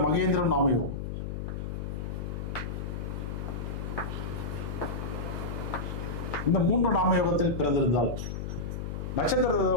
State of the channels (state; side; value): noise; left; hum, 5 dB below the sound